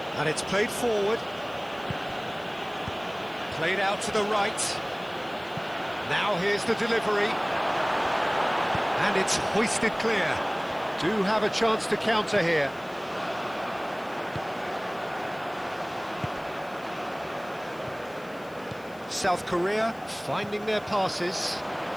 And it's played forward. Played out to the right. Now here's the delivery. And it's hoisted clear. Do have a chance to counter here. South Korea finding their passes.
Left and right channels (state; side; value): noise; left; hiss, 26 dB below the sound